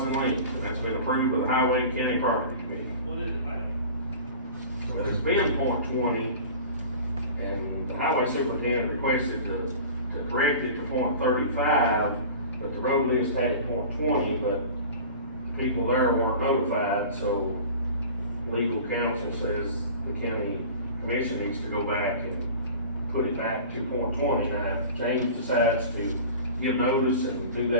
in length. And that's been approved by the Highway and County Property Committee. What is it, ma'am? Well, it's been .20, and the highway superintendent requested to correct it to .35, but the road list had it .20, but people there weren't notified, so legal counsel says the county commission needs to go back and put it back to .20. Now, if James decides to give notice and do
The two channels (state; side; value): inverted; both; correlation -0.39